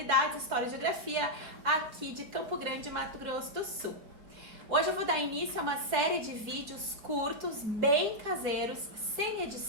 História e Geografia aqui de Campo Grande, Mato Grosso do Sul. Hoje eu vou dar início a uma série de vídeos curtos, bem caseiros, sem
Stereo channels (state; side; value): late; left; 4.8 ms